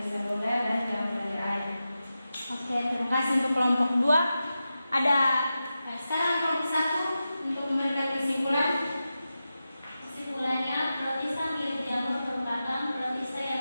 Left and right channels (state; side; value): inverted; both; correlation -0.91